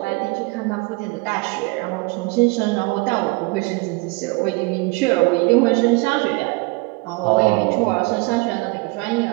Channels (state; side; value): quieter; left; 26.4 dB